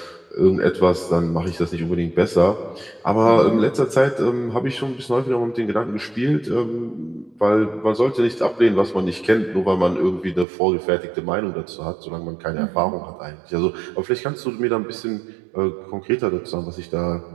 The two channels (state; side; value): drops out; left; at 10.5 s